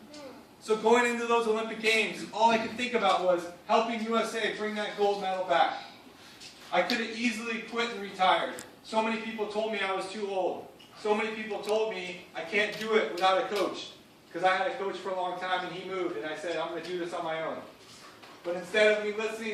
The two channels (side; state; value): both; identical; correlation 1.00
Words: So going into those Olympic Games, all I could think about was helping USA bring that gold medal back. I could have easily quit and retired. So many people told me I was too old. So many people told me I can't do it without a coach. Because I had a coach for a long time and he moved, and I said, I'm going to do this on my own. But instead of me